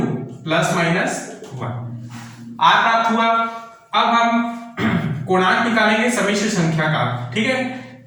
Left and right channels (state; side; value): identical; both; correlation 1.00